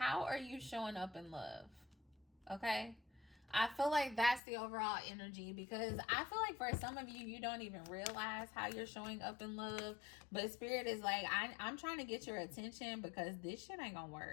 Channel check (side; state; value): right; drops out; at 4.4 s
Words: are you showing up in love? Okay? I feel like that's the overall energy because I feel like for some of you, you don't even realize how you're showing up in love. But Spirit is like, I'm trying to get your attention because this shit ain't going to